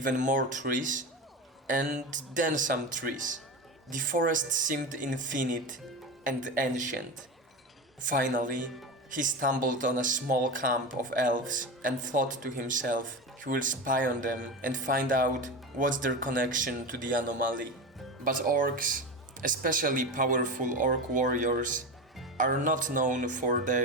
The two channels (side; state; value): both; normal; correlation 0.23